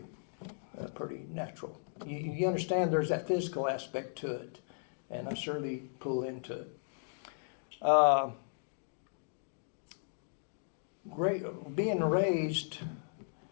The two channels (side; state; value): right; silent; digital silence